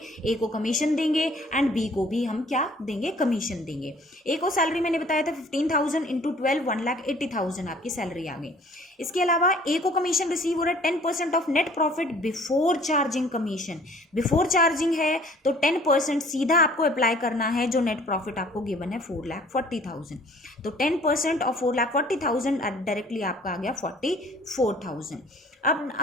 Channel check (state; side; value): normal; both; correlation 0.54